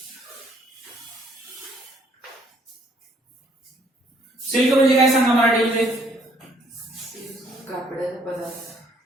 silk म्हणजे काय सांगा मराठीमध्ये. कापडाचा पदार्थ.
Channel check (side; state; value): both; normal; correlation 0.65